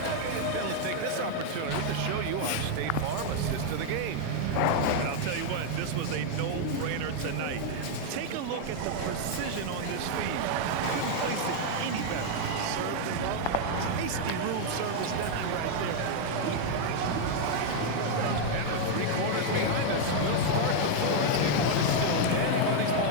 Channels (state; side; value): different; both; correlation 0.00